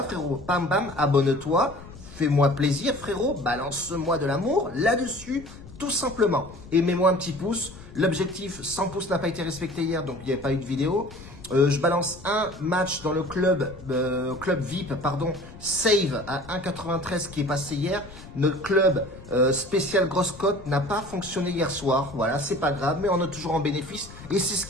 frérot. Bam, bam, abonne-toi. Fais-moi plaisir, frérot. Balance-moi de l'amour là-dessus, tout simplement. Et mets-moi un petit pouce. L'objectif, 100 pouces n'a pas été respecté hier, donc il n'y avait pas eu de vidéo. Je balance un match dans le club VIP, pardon, Save à 1,93 qui est passé hier. Notre club spécial grosse cote n'a pas fonctionné hier soir. Voilà, c'est pas grave, mais on est toujours en bénéfice. Et c'est ce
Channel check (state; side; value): noise; left; rumble, 17 dB below the sound